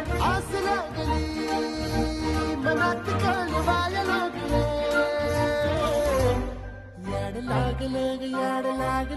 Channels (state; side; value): identical; both; correlation 1.00